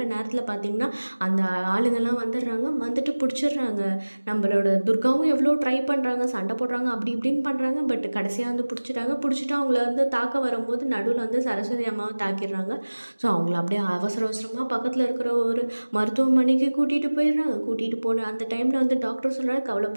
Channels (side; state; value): both; inverted; correlation -1.00